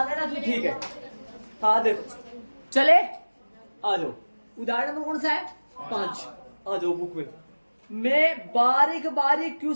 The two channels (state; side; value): inverted; both; correlation -1.00